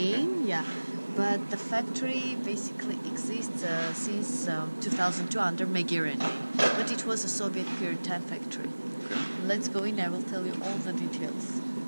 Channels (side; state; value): both; inverted; correlation -1.00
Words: yeah. But the factory basically exists since 2002 under Megerian name. But it was a Soviet period time factory. Okay. Let's go in, I will tell you all the details.